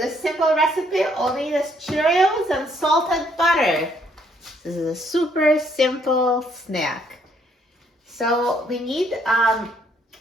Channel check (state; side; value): normal; both; correlation 0.68